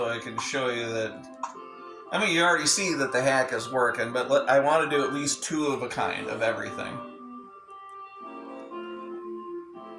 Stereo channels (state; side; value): identical; both; correlation 1.00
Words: I can show you that. I mean, you already see that the hack is working, but I want to do at least 2 of a kind of everything.